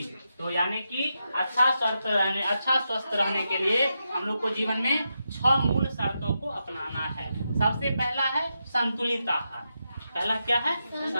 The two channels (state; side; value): inverted; both; correlation -0.86